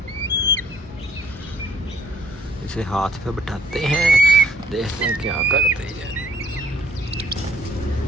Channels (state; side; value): normal; both; correlation 0.62